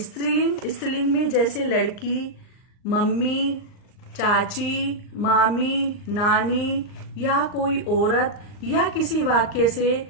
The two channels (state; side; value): late; right; 39 ms